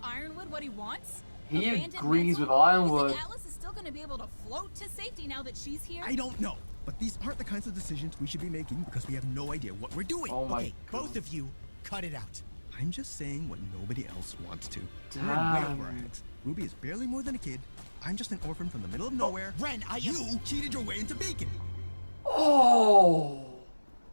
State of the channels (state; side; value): inverted; both; correlation -1.00